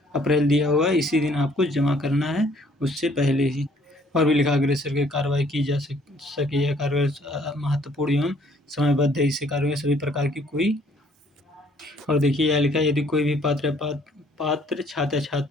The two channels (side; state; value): both; normal; correlation 0.61